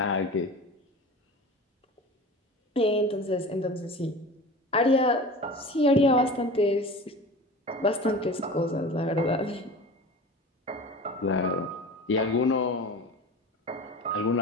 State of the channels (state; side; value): normal; both; correlation 0.35